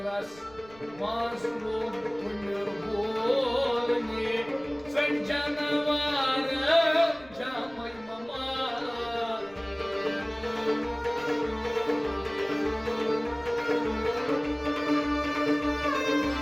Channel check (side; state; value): right; noise; rumble, 24 dB below the sound